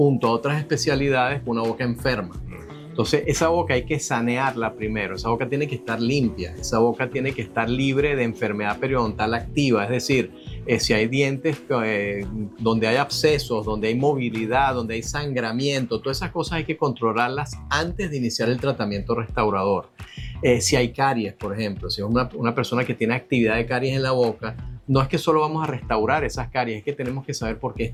a otras especialidades con una boca enferma. Entonces, esa boca hay que sanearla primero. Esa boca tiene que estar limpia. Esa boca tiene que estar libre de enfermedad periodontal activa. Es decir, si hay dientes donde hay abscesos, donde hay movilidad, donde hay sangramiento, todas esas cosas hay que controlarlas antes de iniciar el tratamiento restaurador. Si hay caries, por ejemplo, si es una persona que tiene actividad de caries en la boca, no es que solo vamos a restaurar esas caries, es que tenemos que saber por qué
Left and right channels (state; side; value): identical; both; correlation 1.00